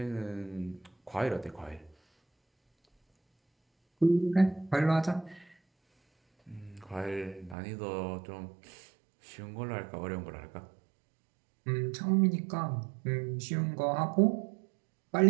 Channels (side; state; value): left; drops out; at 7.6 s